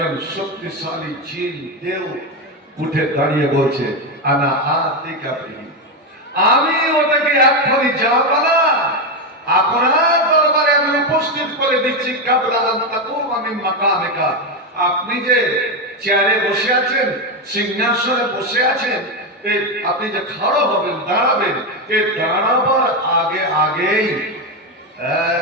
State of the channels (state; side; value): normal; both; correlation 0.10